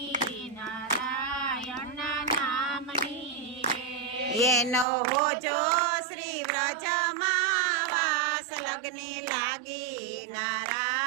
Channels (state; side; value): drops out; left; at 4.9 s